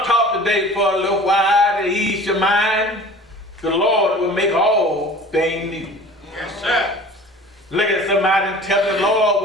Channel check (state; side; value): normal; both; correlation 0.43